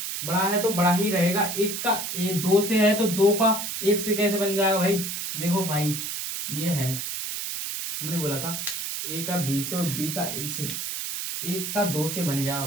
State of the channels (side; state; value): right; noise; hiss, 4 dB below the sound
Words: बड़ा है तो बड़ा ही रहेगा। 1 का ए 2 से है तो 2 का 1 से कैसे बन जाएगा भाई, देखो भाई ये है, हमने बोला था ए का बी से और बी का ए से, 1 का 2 से बन गया,